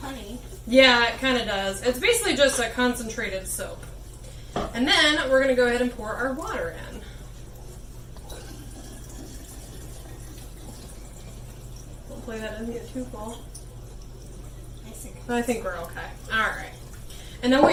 honey. Yeah, it kind of does. It's basically just a concentrated soap. And then we're going to go ahead and pour our water in. Hopefully that doesn't get too full. I think we're okay. All right. And then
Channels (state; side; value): identical; both; correlation 1.00